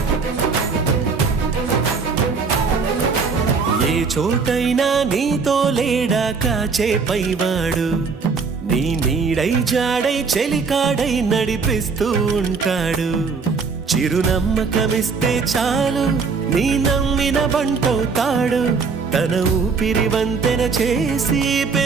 ఏ చోటైనా నీతో లేడా కాచే పైవాడు, నీ నీడై జాడై చెలికాడై నడిపిస్తూ ఉంటాడు. చిరునమ్మకమిస్తే చాలు నీ నమ్మిన బంటవుతాడు. తన ఊపిరి వంతెన చేసి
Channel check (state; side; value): quieter; left; 5.0 dB